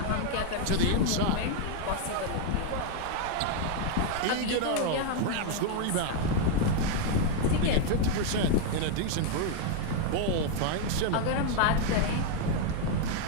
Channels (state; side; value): different; both; correlation 0.00